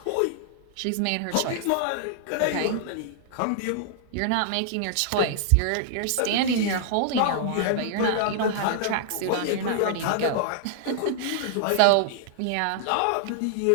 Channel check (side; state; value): both; different; correlation -0.01